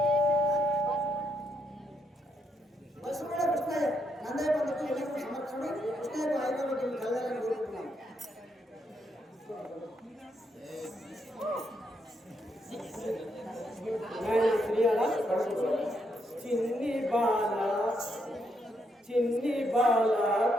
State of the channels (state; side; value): normal; both; correlation 0.77